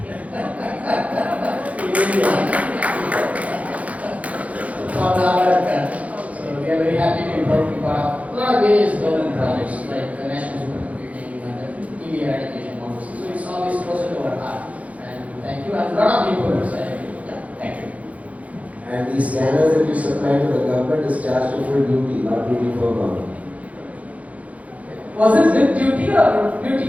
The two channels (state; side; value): late; left; 0.068 ms